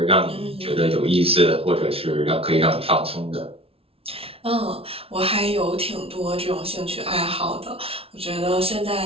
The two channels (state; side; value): late; left; 0.27 ms